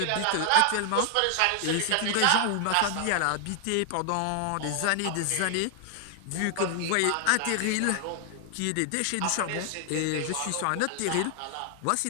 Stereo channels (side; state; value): both; different; correlation 0.00